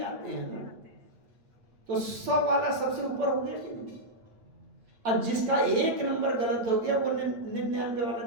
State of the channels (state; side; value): late; left; 8.8 ms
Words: आते हैं ना, तो 100 वाला सबसे ऊपर हो गया कि नहीं। अब जिसका 1 नंबर गलत हो गया वो 99